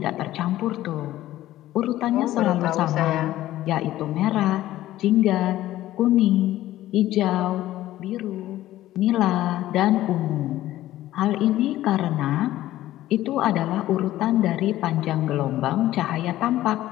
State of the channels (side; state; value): right; quieter; 14.6 dB